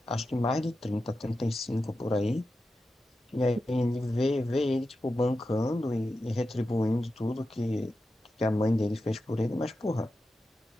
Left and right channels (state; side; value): normal; both; correlation 0.91